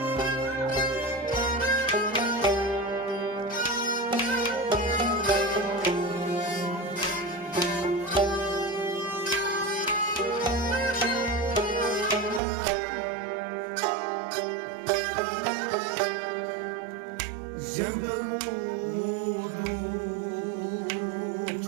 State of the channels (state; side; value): drops out; left; at 12.4 s